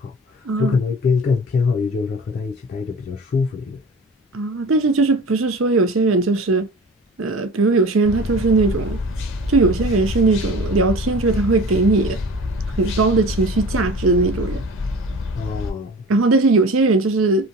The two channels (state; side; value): normal; both; correlation 0.38